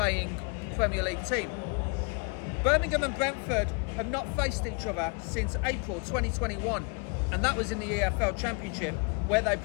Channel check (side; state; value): right; quieter; 34.4 dB